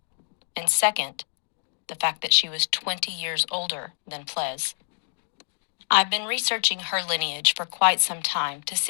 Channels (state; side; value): silent; right; digital silence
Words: and second, the fact that she was 20 years older than Ples. I've been researching her lineage for quite some time to